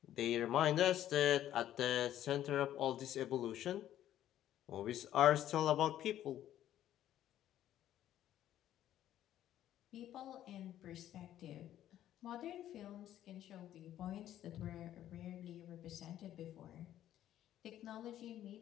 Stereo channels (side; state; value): right; quieter; 12.0 dB